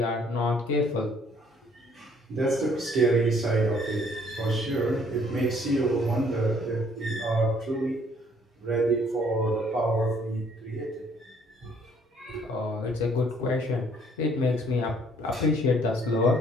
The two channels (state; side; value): normal; both; correlation 0.62